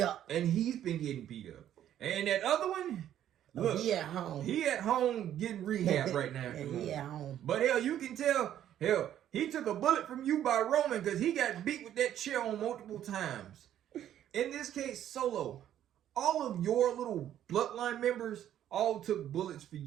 And he's been getting beat up. And that other one, look, he at home. He at home getting rehab right now. He at home. But hell, you can tell, hell, he took a bullet from you by Roman because he got beat with that chair on multiple times. In this case, Solo, all of your little bloodline members all took bullets for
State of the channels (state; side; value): quieter; left; 11.1 dB